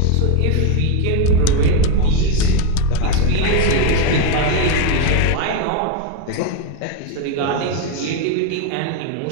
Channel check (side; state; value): both; different; correlation 0.02